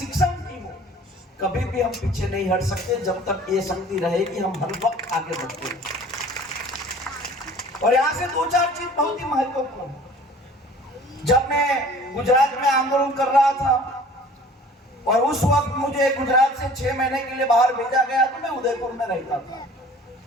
की हो, कभी भी हम पीछे नहीं हट सकते जब तक ये शक्ति रहेगी। हम हर वक्त आगे बढ़ते हैं। और यहां से दो चार चीज बहुत ही महत्वपूर्ण है। जब मैं गुजरात में आंदोलन कर रहा था और उस वक्त मुझे गुजरात से 6 महीने के लिए बाहर भेजा गया, तो मैं उदयपुर में रहता था।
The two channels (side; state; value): both; normal; correlation 0.48